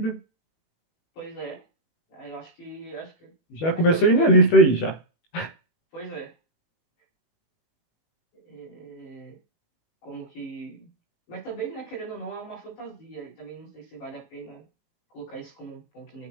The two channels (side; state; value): right; late; 18 ms